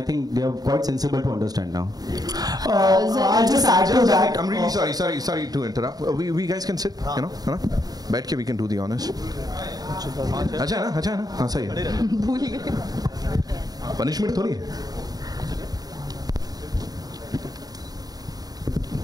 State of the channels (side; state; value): left; late; 0.18 ms